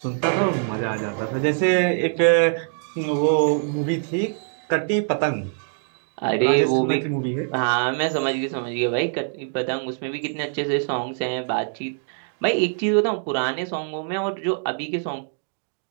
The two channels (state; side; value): silent; left; digital silence